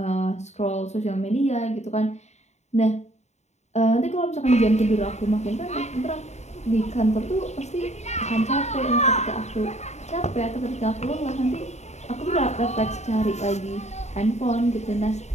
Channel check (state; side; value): late; right; 0.32 ms